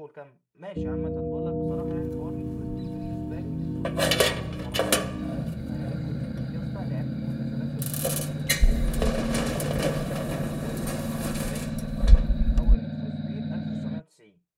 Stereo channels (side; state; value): both; identical; correlation 1.00